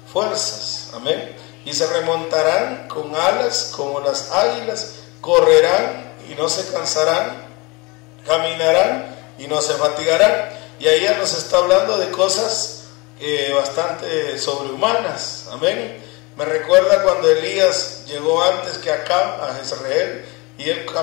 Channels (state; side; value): quieter; right; 26.4 dB